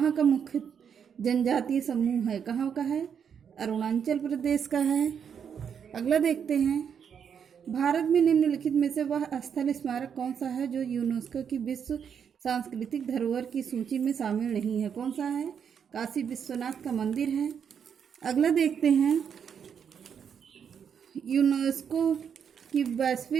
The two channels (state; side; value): quieter; left; 7.5 dB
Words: का मुख्य जनजातीय समूह है? कहाँ का है? अरुणाचल प्रदेश का है। अगला देखते हैं। भारत में निम्नलिखित में से वह स्थल स्मारक कौन सा है जो यूनेस्को की विश्व सांस्कृतिक धरोहर की सूची में शामिल नहीं है? कौन सा है? काशी विश्वनाथ का मंदिर है। अगला देखते हैं। यूनेस्को की